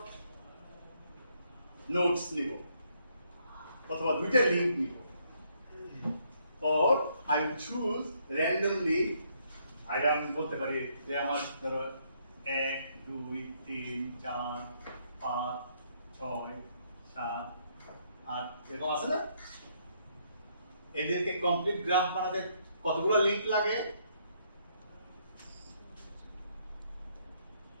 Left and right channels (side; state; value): both; inverted; correlation -0.71